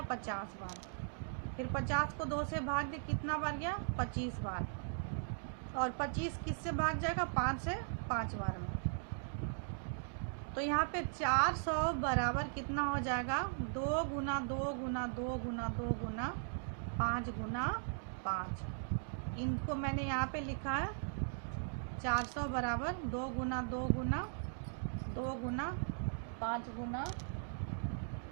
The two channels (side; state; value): left; silent; digital silence